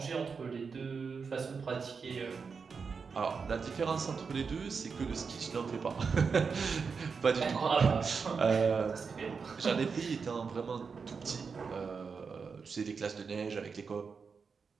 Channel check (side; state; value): left; quieter; 5.4 dB